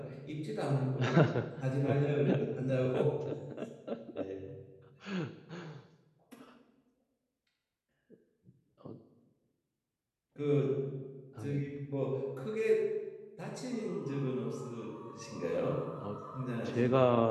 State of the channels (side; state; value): both; identical; correlation 1.00